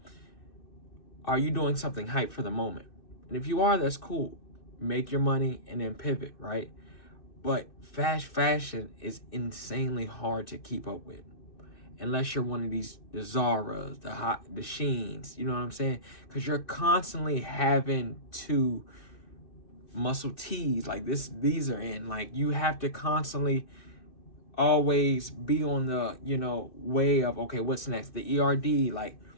are you doing something hype for the moment? And if you are, that's cool. Make your money and then pivot, right? But fast fashion is insanely hard to keep up with. Unless you're one of the Zaras, the Sheens, you know what I'm saying? Because you're constantly having to muscle tees like these are in. Like, you have to constantly always be on the, way of, okay, what's next? The ERD, like,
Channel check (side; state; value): right; late; 2.6 ms